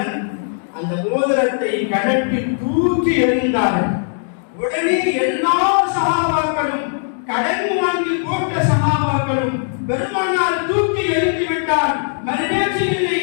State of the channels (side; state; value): right; silent; digital silence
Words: அந்த மோதிரத்தை கழட்டி தூக்கி எறிந்தார்கள். உடனே எல்லா சஹாபாக்களும், கடன் வாங்கி போட்ட சஹாபாக்களும் பெருமானார் தூக்கி எறிந்து விட்டார். மறுபேச்சிலே